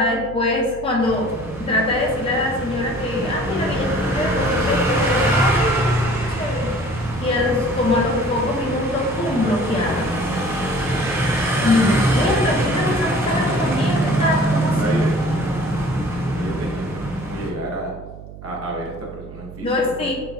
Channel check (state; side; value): noise; right; hum, 15 dB below the sound